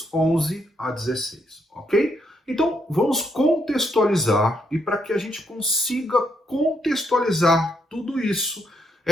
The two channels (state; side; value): normal; both; correlation 0.76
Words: 11 a 16, ok? Então vamos contextualizar, e para que a gente consiga contextualizar tudo isso,